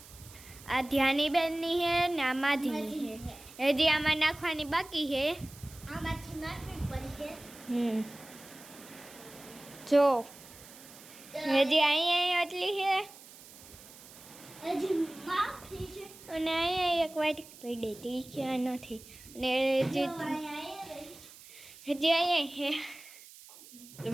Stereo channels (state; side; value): noise; right; hiss, 19 dB below the sound